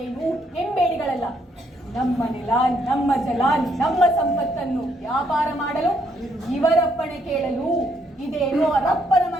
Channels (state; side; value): normal; both; correlation 0.72